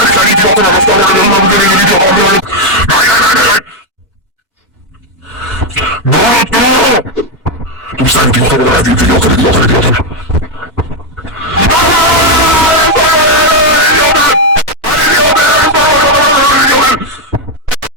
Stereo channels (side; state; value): both; normal; correlation 0.04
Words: kleinen Idioten, aber das dauert, Nein. Du bist ein Idiot, oder ein Idiot.